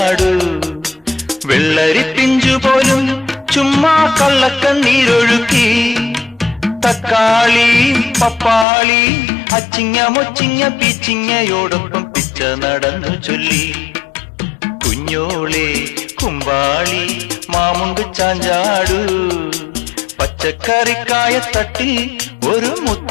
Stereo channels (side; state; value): right; drops out; at 8.7 s